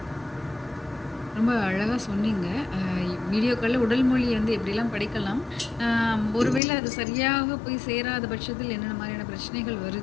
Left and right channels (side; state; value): right; drops out; at 6.6 s